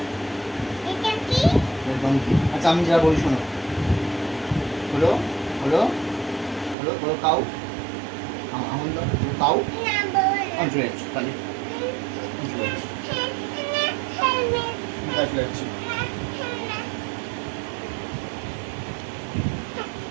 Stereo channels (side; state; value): left; drops out; at 6.8 s